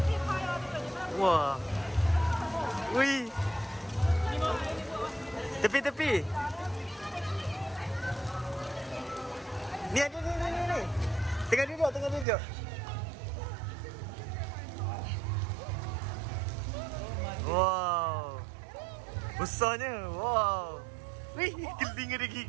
Wah. Wih. Tepi. Ni. Tengah duduk. Wow. Besarnya. Wow. Wih, telinga dia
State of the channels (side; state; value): left; drops out; at 12.2 s